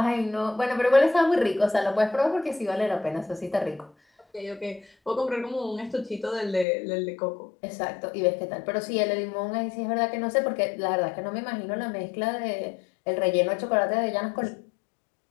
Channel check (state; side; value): drops out; right; at 6.7 s